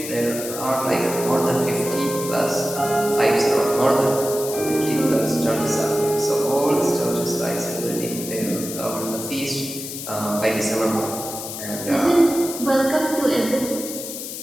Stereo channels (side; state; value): left; noise; hiss, 8 dB below the sound